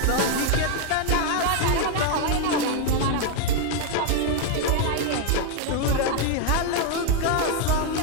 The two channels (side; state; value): both; different; correlation 0.00